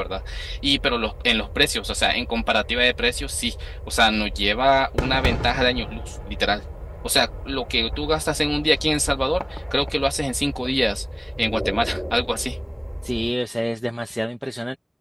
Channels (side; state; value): both; identical; correlation 1.00